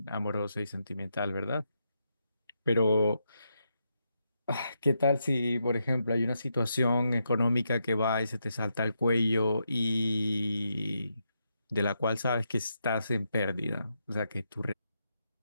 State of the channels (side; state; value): both; inverted; correlation -0.82